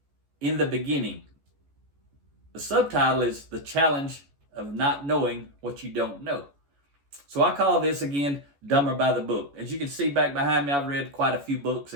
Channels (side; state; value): left; late; 14 ms